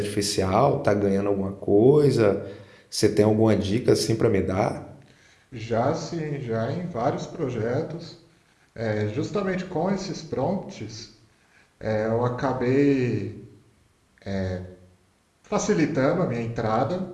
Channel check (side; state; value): both; identical; correlation 1.00